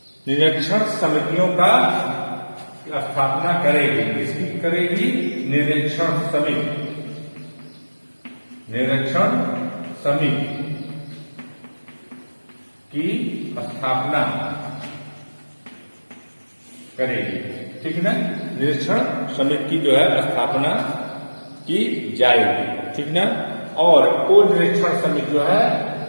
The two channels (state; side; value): inverted; both; correlation -1.00